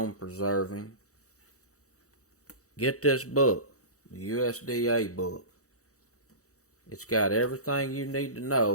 preserving, get this book, the USDA book. It's got everything you need to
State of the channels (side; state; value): right; late; 0.65 ms